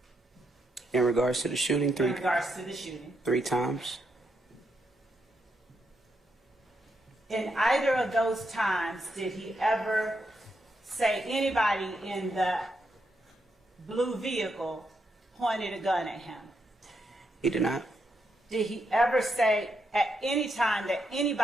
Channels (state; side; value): normal; both; correlation 0.81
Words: In regards to the shooting, In regards to the shooting. 3 times. In either of those times, did he ever say anybody in the blue vehicle pointed a gun at him? He did not. Did he ever say at any time that